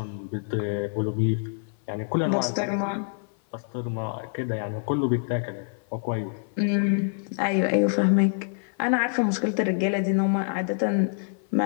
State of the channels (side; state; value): right; silent; 56 dB below the other